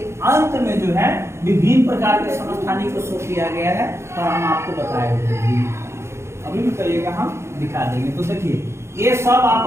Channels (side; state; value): left; late; 0.13 ms